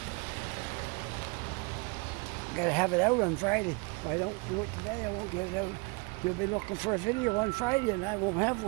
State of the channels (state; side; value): quieter; left; 30.7 dB